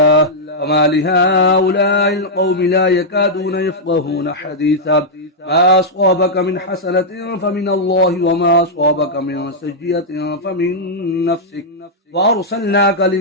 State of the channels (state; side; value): normal; both; correlation -0.07